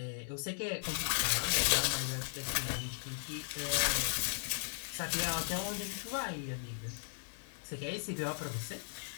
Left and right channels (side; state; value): right; silent; digital silence